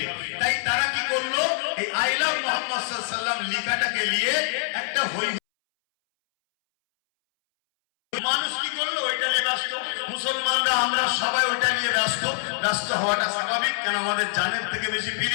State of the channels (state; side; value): silent; right; 62 dB below the other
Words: তাই তারা কি করলো, এই আই লাভ মুহাম্মদ সাল্লাল্লাহু আলাইহি ওয়াসাল্লাম লেখাটাকে নিয়ে একটা মানুষ কি করলো, ওইটা নিয়ে ব্যস্ত। মুসলমানরা আমরা সবাই ওটা নিয়ে ব্যস্ত। ব্যস্ত হওয়াটা স্বাভাবিক, কেন আমাদের জানের থেকে বেশি